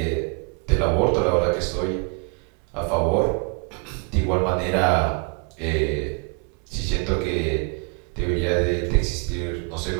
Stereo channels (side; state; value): left; quieter; 35.3 dB